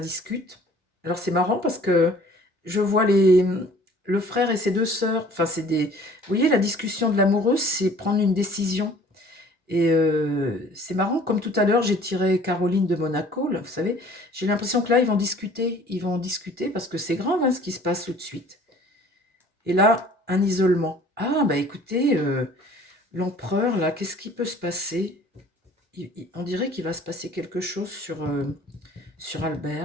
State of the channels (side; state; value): both; normal; correlation 0.52